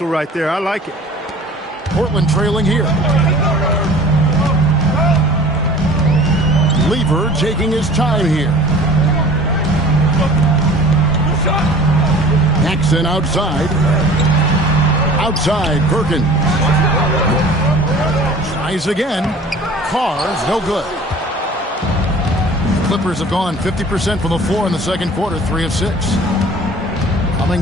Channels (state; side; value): normal; both; correlation 0.46